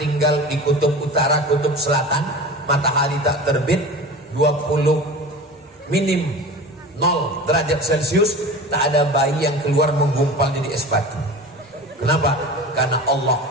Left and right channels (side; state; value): both; normal; correlation 0.34